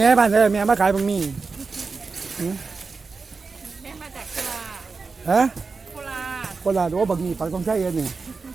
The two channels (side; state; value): left; quieter; 4.5 dB